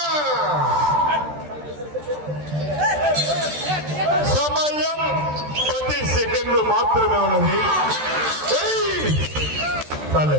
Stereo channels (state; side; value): late; left; 13 ms